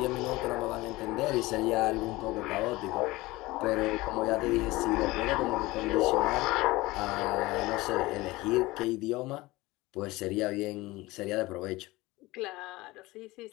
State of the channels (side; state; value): right; quieter; 20.3 dB